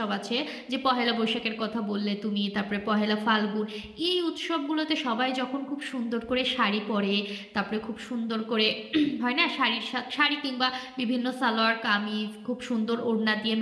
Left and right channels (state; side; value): identical; both; correlation 1.00